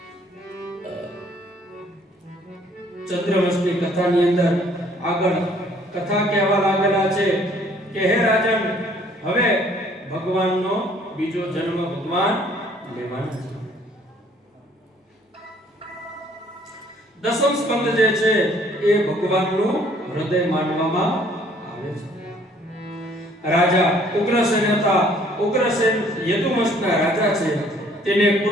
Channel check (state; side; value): normal; both; correlation 0.59